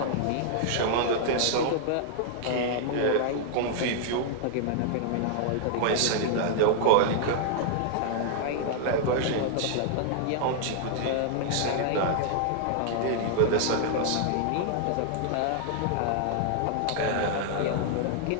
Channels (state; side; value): different; both; correlation -0.01